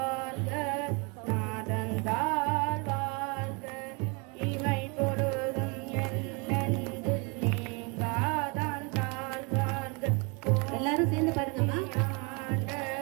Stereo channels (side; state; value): left; quieter; 30.4 dB